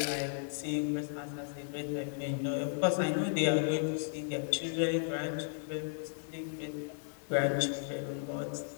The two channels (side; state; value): right; silent; digital silence